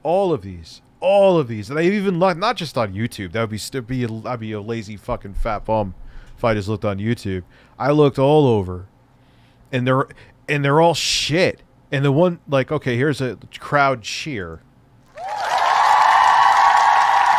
all of these. And I've even looked, not just on YouTube. That would be I'd be a lazy fucking fat bum if I just looked on YouTube. I looked all over. And they're all shit. And the one, like, okay, here's a crowd cheer.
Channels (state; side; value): identical; both; correlation 1.00